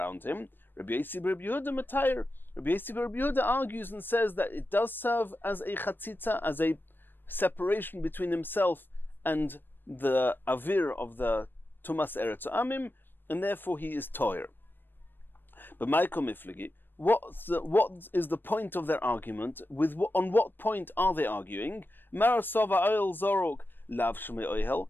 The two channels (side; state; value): right; late; 0.095 ms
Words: him. Rabbi Yossi Rabbi Yehuda Matayr. Rabbi Yossi Rabbi Yehuda argues and says that it does serve as a chatzitza, as a separation between himself and the avir of the tumas eretz amim, and therefore he is toyer. But Michael Miflegi, what is the point of their argument? On what point are they arguing? Marasova oil zorok lav shmei oihel.